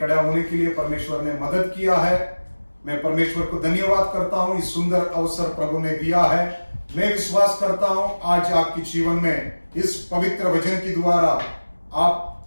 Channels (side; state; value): both; inverted; correlation -1.00